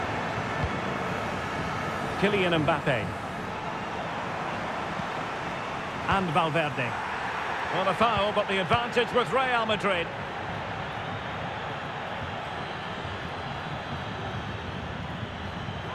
Kylian Mbappe. And Valverde. Well, a foul, but the advantage with Real Madrid.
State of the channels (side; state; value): both; identical; correlation 1.00